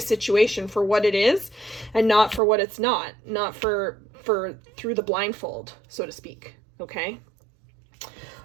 for what it is and not for what it's not for through the blindfold, so to speak, okay?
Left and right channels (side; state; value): left; drops out; at 2.4 s